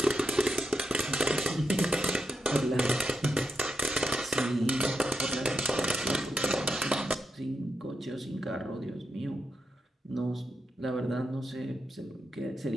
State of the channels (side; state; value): both; normal; correlation 0.85